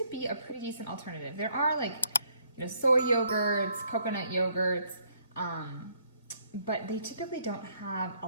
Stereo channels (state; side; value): inverted; both; correlation -0.67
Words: be a pretty decent alternative. There are soy yogurts, coconut yogurts, but they typically don't have a